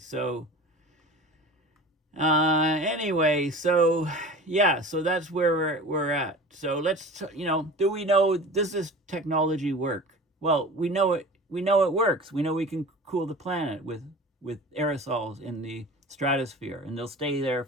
anyway, so yeah, so that's where we're at. So let's, do we know, does this technology work? Well, we know it works. We know we can cool the planet with aerosols in the stratosphere, and they'll stay there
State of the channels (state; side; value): normal; both; correlation 0.38